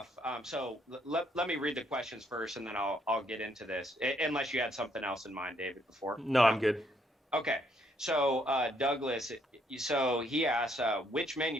so let me read the questions first, and then I'll get into this, unless you had something else in mind, David, before. No, I'm good. Okay. So Douglas, so he asks, which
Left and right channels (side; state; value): both; normal; correlation 0.70